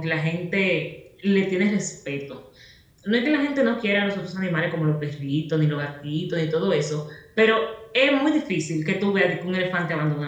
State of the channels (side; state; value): both; identical; correlation 1.00